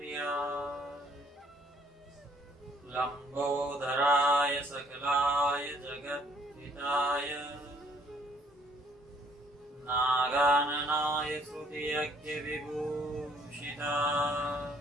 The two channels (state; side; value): normal; both; correlation 0.62